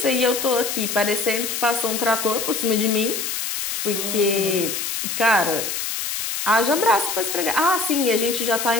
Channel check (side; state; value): left; noise; hiss, 3 dB below the sound